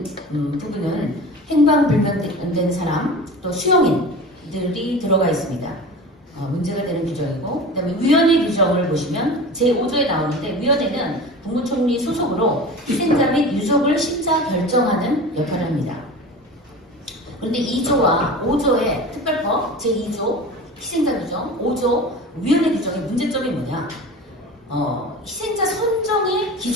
부분은 행방불명된 사람 또 수용인들이 들어가 있습니다. 문제가 되는 규정이고 그 다음에 위원회 규정을 보시면 제5조에 나오는데 위원회는 국무총리 소속으로 희생자 및 유족을 심사 결정하는 역할을 합니다. 그런데 2조와 5조의 특별법 제2조 희생자 규정 5조 위원회 규정의 문제점이 뭐냐 희생자 선정의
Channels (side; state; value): both; normal; correlation 0.34